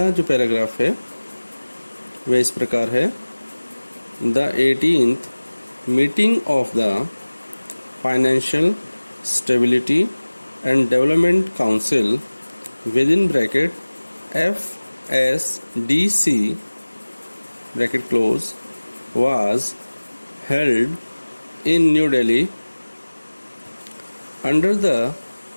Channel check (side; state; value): both; inverted; correlation -1.00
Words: जो पैराग्राफ है वह इस प्रकार है। The 18th meeting of the financial stability and development council with in bracket FSDC bracket close was held in New Delhi under the